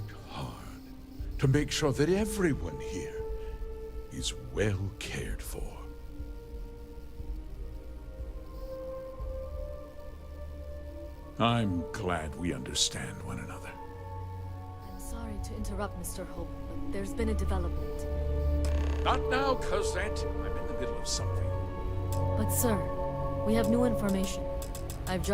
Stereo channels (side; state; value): both; identical; correlation 1.00